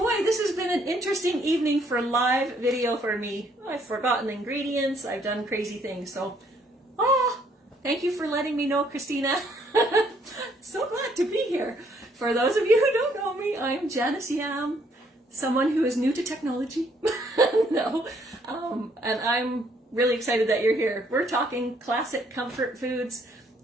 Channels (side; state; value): both; normal; correlation 0.67